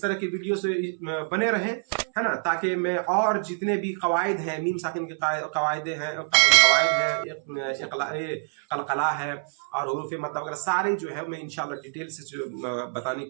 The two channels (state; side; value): silent; left; 61 dB below the other